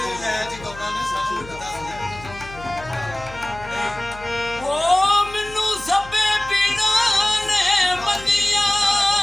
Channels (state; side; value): noise; left; hum, 17 dB below the sound